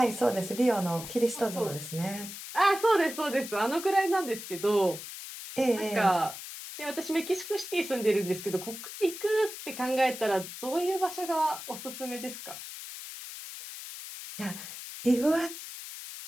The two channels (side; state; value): left; noise; hiss, 10 dB below the sound